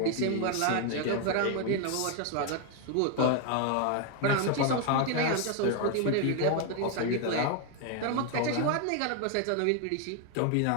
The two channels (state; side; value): different; both; correlation 0.00